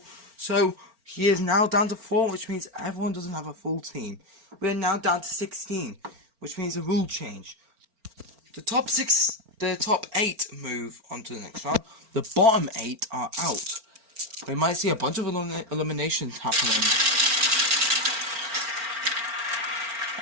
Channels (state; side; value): late; left; 4.4 ms